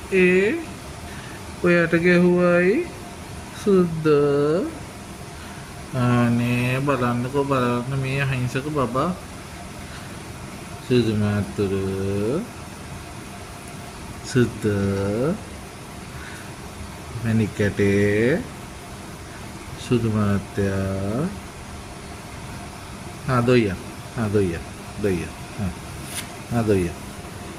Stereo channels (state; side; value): identical; both; correlation 1.00